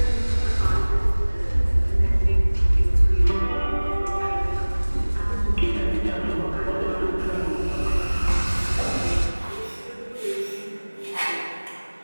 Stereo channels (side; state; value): both; inverted; correlation -1.00